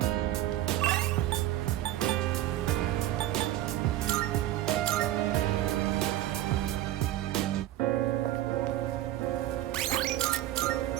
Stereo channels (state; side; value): quieter; left; 14.0 dB